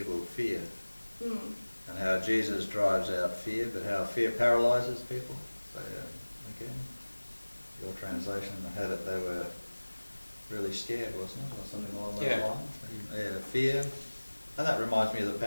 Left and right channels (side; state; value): both; inverted; correlation -1.00